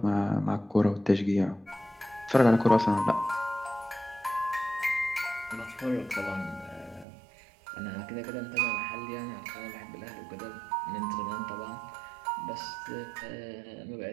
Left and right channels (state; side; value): drops out; left; at 7.1 s